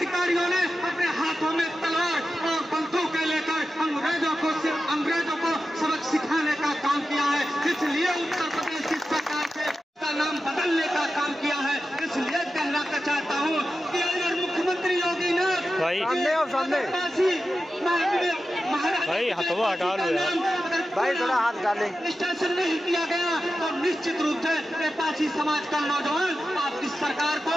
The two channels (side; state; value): both; normal; correlation 0.92